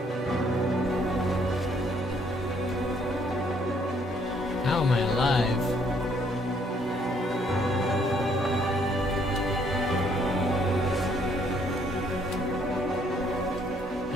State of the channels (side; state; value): both; normal; correlation 0.66